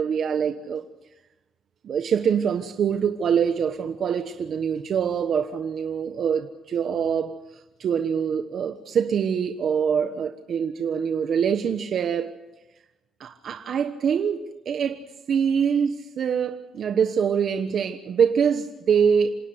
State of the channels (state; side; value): quieter; left; 6.9 dB